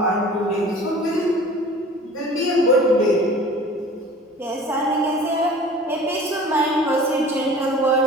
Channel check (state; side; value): normal; both; correlation 0.44